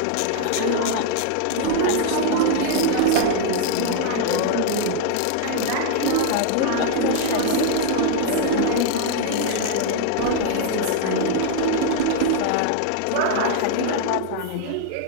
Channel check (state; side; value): different; both; correlation 0.00